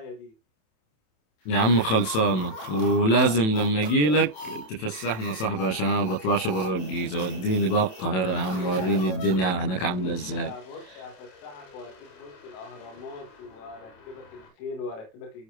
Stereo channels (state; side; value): late; right; 27 ms